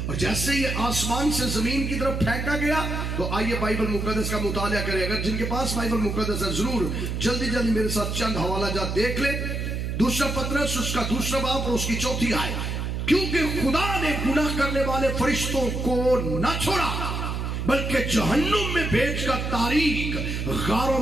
اور جیسے یہ آسمان سے زمین کی طرف پھینکا گیا تو آئیے بائبل مقدس کا مطالعہ کریں. اگر جن کے پاس بائبل مقدس ہے ضرور جلدی جلدی میرے ساتھ چند حوالہ جات دیکھ لیں. دوسرا پطرس اس کا دوسرا باب اور اس کی 4 آیت. کیونکہ خدا نے گناہ کرنے والے فرشتوں کو نہ چھوڑا بلکہ جہنم میں بھیج کر تاریک غاروں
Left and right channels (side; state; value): right; noise; hum, 2 dB below the sound